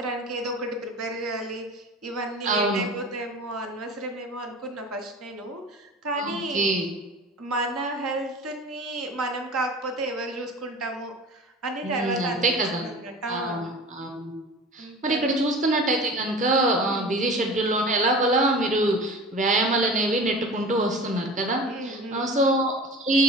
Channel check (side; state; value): both; normal; correlation 0.37